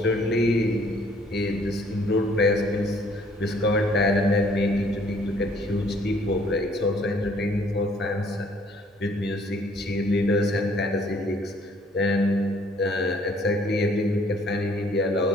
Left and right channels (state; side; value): normal; both; correlation 0.61